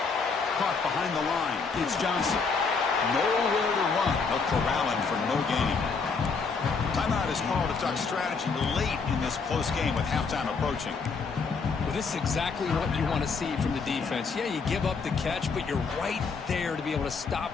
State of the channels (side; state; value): right; quieter; 4.9 dB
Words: Caught behind the line. It's Johnson. Nowhere to run. They'll corral him for no gain. Timeout is called to talk strategy late in this close game with halftime approaching. Well, this is exactly what you want to see from the defense. Yeah, you give up the catch, but you're right there to be able to